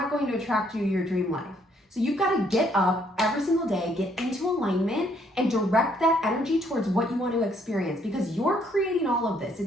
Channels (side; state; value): both; normal; correlation 0.68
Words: going to attract you to your dream life. So you've got to get up every single day, get into alignment, and direct that energy towards what you want to experience because you're creating all of this.